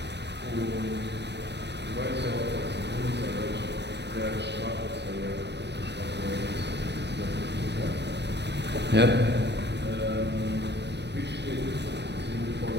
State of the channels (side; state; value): left; late; 0.50 ms